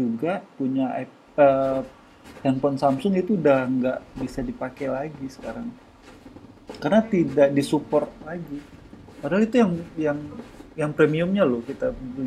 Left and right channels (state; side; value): identical; both; correlation 1.00